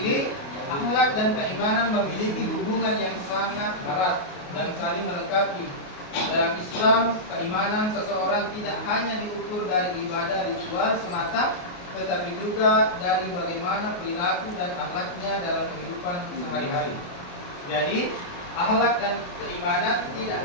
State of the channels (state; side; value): late; right; 28 ms